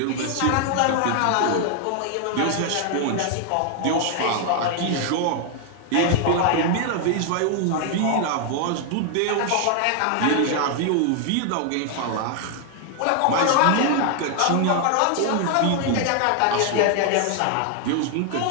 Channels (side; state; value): both; different; correlation 0.00